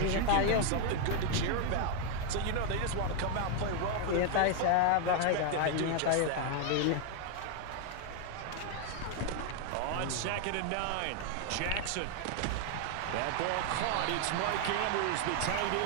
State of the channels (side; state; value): both; different; correlation 0.00